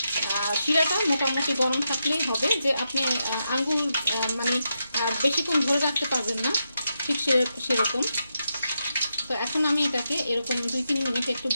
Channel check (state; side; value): inverted; both; correlation -0.85